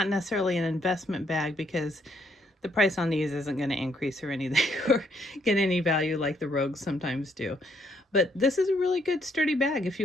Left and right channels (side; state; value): both; normal; correlation 0.71